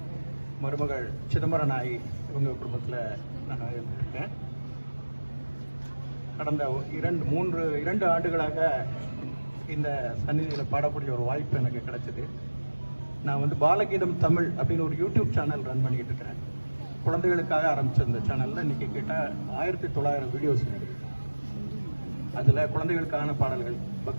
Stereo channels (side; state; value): both; inverted; correlation -1.00